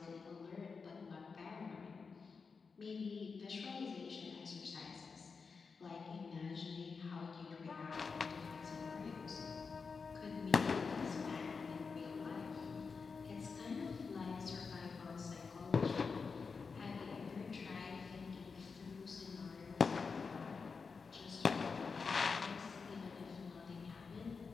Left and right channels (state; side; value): quieter; right; 5.0 dB